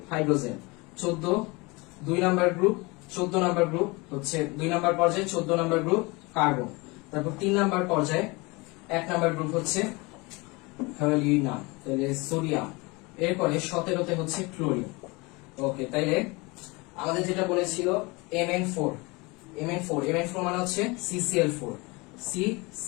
hydrogen. 14 2 number group, 14 number group হচ্ছে 2 নাম্বার পর্যায়ে 14 নাম্বার গ্রুপ কার্বন। তারপর 3 নাম্বার পর্যায়ে 1 নাম্বার গ্রুপ হচ্ছে হ্যালোজিনাম, তাহলে সোডিয়াম। এরপরে 17তে হচ্ছে ক্লোরিন। ওকে, তাইলে আমাদের যেটা বলেছিল Mn4, Mn4 মানে হচ্ছে CCl4,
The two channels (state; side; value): quieter; right; 25.8 dB